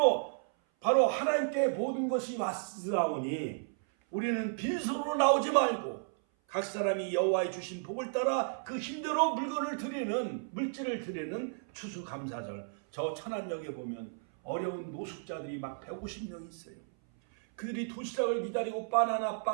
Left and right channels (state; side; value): silent; left; 56 dB below the other